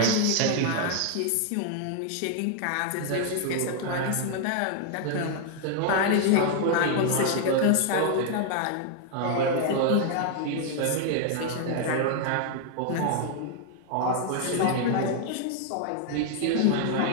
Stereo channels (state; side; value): different; both; correlation 0.00